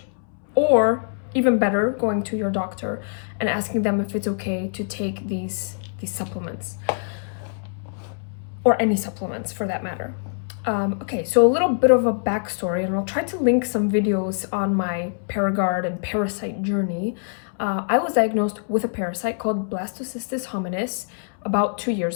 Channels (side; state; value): right; silent; 63 dB below the other